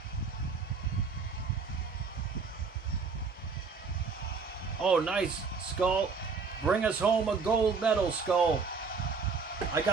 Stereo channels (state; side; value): quieter; left; 4.9 dB